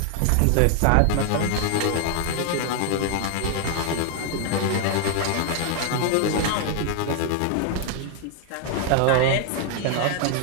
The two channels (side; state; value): both; different; correlation 0.00